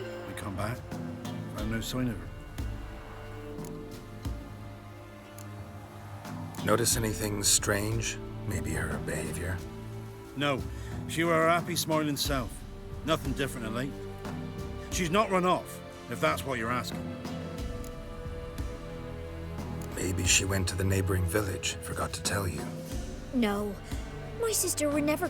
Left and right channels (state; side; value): identical; both; correlation 1.00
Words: We come back, found no sign of her. Notice anything strange? Maybe her behavior? No, she were her happy, smiling self. Nothing different than late. She's not run off, if that's what you're asking. Maybe she went to the neighboring village, forgot to tell you. No, my sister were never